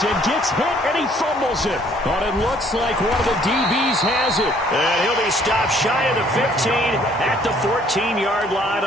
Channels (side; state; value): both; normal; correlation 0.61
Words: gets hit and he fumbles it. But it looks like one of the DBs has it. And he'll be stopped shy of the 15 at the 14-yard line